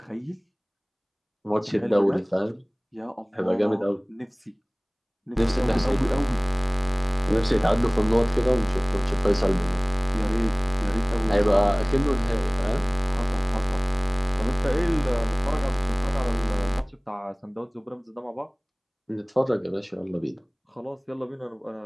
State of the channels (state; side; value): identical; both; correlation 1.00